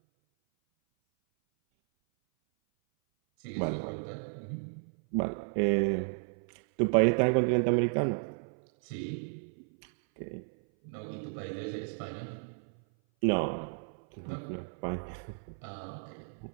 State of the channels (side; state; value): left; silent; 56 dB below the other